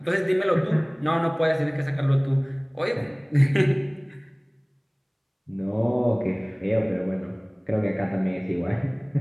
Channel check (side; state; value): both; identical; correlation 1.00